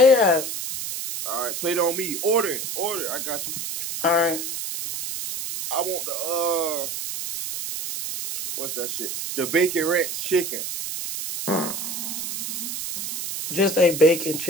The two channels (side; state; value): right; noise; hiss, 5 dB below the sound